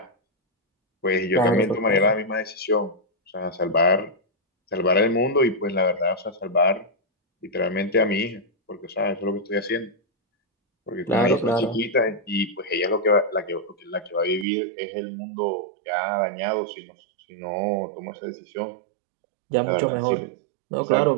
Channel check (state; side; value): drops out; left; at 14.5 s